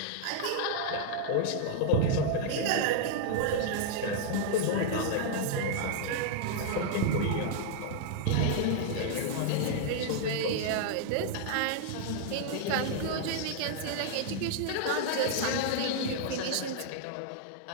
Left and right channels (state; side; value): different; both; correlation -0.01